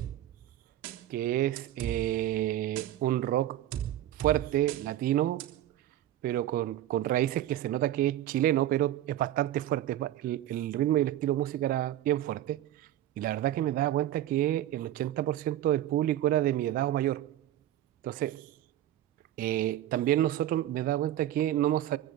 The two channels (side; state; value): left; quieter; 12.9 dB